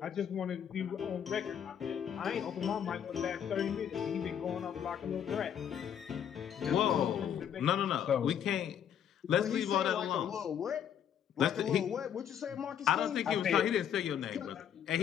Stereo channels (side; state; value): right; quieter; 9.0 dB